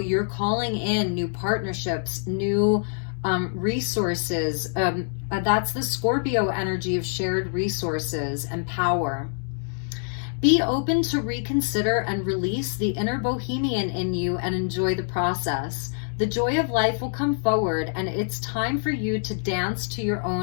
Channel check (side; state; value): right; silent; digital silence